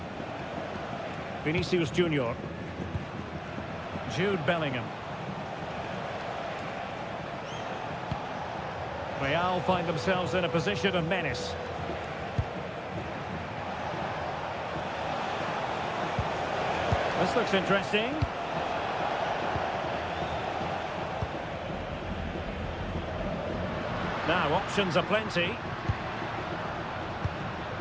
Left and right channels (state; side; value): identical; both; correlation 1.00